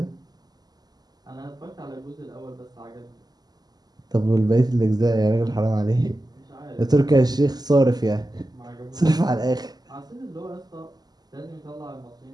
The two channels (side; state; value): left; late; 0.20 ms